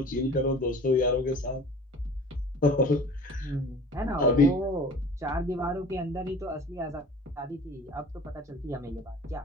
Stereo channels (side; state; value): both; normal; correlation 0.43